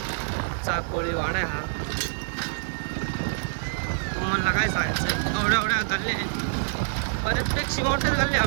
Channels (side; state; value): left; silent; 61 dB below the other